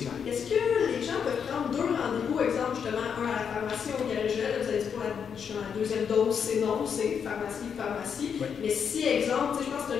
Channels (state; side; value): quieter; right; 7.1 dB